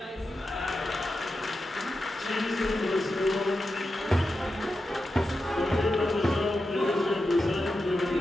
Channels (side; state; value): both; normal; correlation 0.90